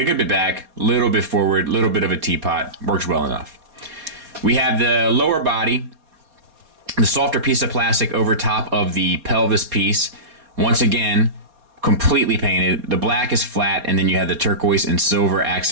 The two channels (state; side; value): late; left; 4.2 ms